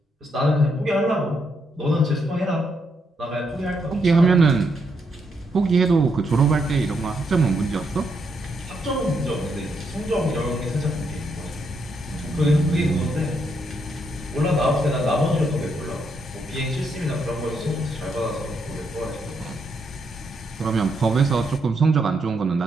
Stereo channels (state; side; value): normal; both; correlation 0.78